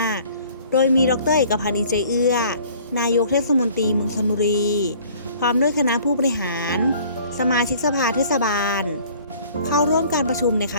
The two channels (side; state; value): both; inverted; correlation -0.53